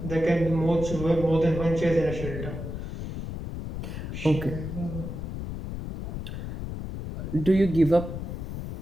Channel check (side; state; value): left; noise; rumble, 7 dB below the sound